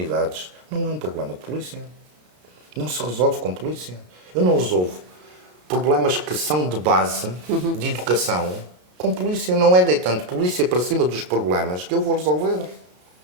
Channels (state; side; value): late; left; 33 ms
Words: não é um problema de polícia. Não se resolve com polícia. Eu não resolvo problemas que são de base, de educação, com polícia. Não é deitando polícia para cima dos problemas que eu vou resolver.